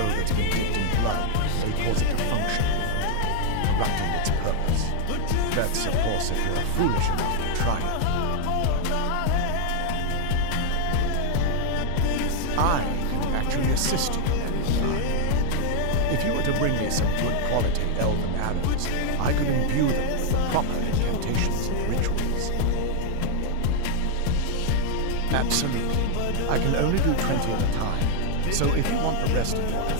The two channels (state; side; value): different; both; correlation 0.00